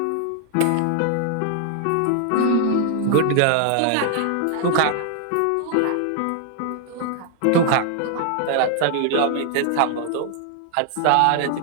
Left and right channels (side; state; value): both; different; correlation 0.00